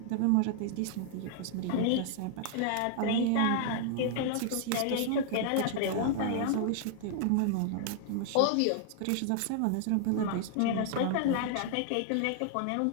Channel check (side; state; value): both; different; correlation -0.01